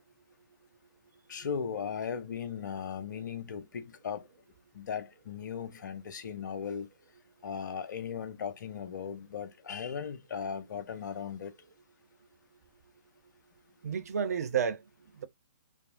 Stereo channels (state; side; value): inverted; both; correlation -0.42